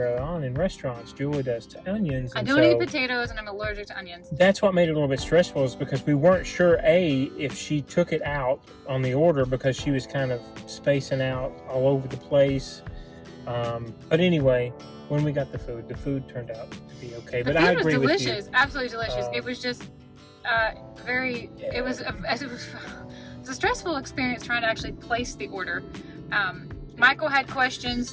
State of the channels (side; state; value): both; identical; correlation 1.00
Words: early on in restaurants. Julie does to onions. I don't eat potatoes, and I'm allergic to onions. That's what made it a little bit stressful, is because we weren't sure, if she took it out on the order because she was kind of spacing out all over the place. But anyway, when we got the food turned out to be okay. But I agree with you. It was delicious, absolutely delicious. It was just it was a stressful experience trying to actually place the order. Michael had